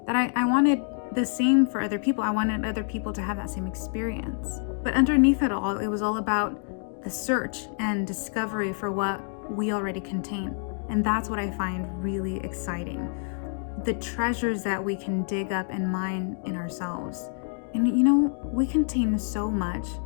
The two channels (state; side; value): silent; right; 56 dB below the other